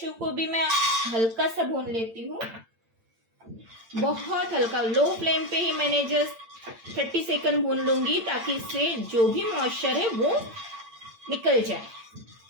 को भी मैं हल्का सा भून लेती हूँ, बहुत हल्का। लो फ्लेम पे ही मैंने जस्ट 30 सेकंड भून लूंगी ताकि इससे जो भी मॉइस्चर है वो निकल जाए।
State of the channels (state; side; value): late; left; 8.9 ms